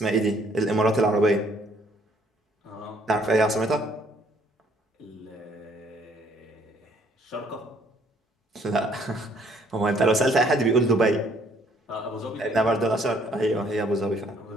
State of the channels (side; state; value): both; normal; correlation 0.64